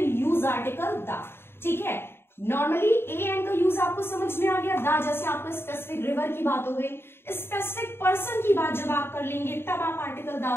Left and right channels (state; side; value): late; right; 0.11 ms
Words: use article the, ठीक है। नॉर्मली ए एन का यूज आपको समझ में आ गया, द जैसे आपको स्पेसिफिक रिवर की बात हो गई। स्पेसिफिक पर्सन की बात जब आप कर लेंगे तब आप आर्टिकल